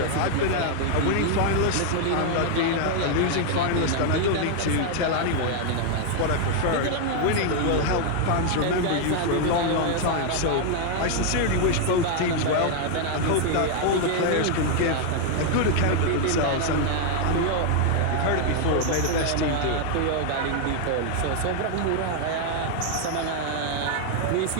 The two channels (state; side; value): different; both; correlation 0.00